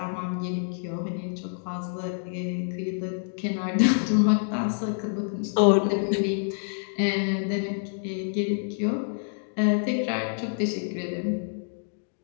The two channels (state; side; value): silent; right; digital silence